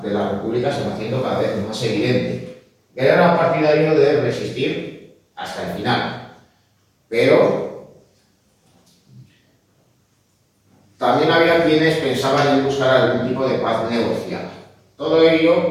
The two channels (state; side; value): identical; both; correlation 1.00